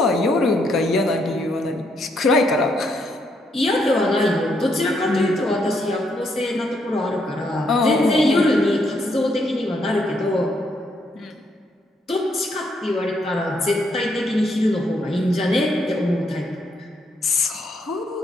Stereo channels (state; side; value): normal; both; correlation 0.75